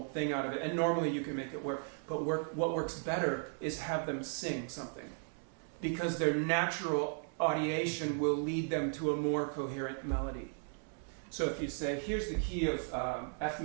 thing out of it. And normally you can make it work. But what works better is have them sing something. because their natural audiation will lead them to a more coherent melody. So if you say, here's the key of F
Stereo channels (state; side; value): silent; left; 54 dB below the other